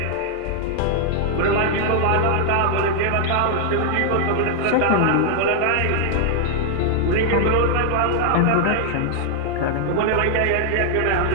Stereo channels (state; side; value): different; both; correlation 0.00